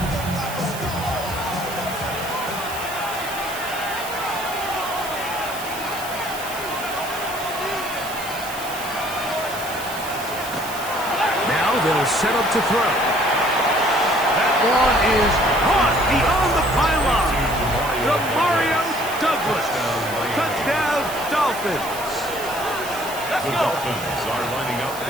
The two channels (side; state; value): right; noise; hiss, 11 dB below the sound